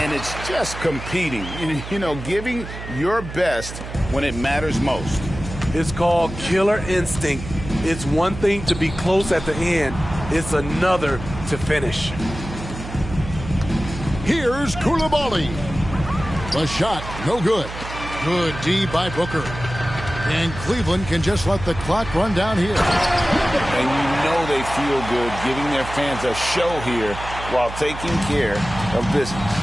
it's just competing. You know, giving your best when it matters most. It's called killer instinct. It's one thing to be close at the end. It's another to finish. Here's Koulibaly. The shot, no good. Good D by Booker. And Cleveland can just let the clock run down here. And you know they feel good giving their fans a show here while taking care of business.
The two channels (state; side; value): noise; right; hum, 10 dB below the sound